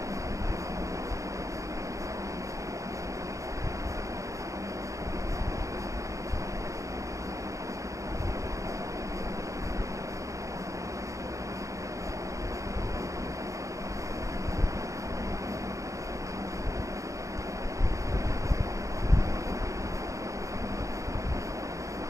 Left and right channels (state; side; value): late; left; 0.15 ms